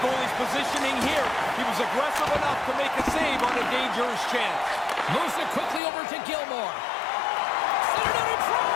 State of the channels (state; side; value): drops out; right; at 5.8 s